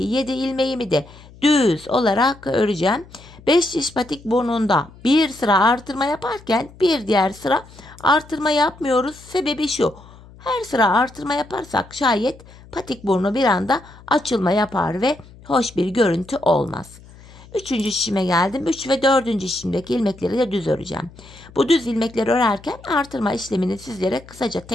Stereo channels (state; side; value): noise; left; hum, 22 dB below the sound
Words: 7 ilmeğimi de düz olarak öreceğim. 5 şiş patik burnunda bir sıra artırma yaparken bir diğer sıra artırma yapmıyoruz. Sebebi şu: her sıra artırma yaparsak şayet patik burnu bir anda açılma yapar ve hoş bir görüntü olmaz. Üçüncü şişime geldim. 3 ve 4. şişimdeki ilmekleri de düz öreceğim. Bu düz ilmekleri örerken artırma işlemini sizlere kısaca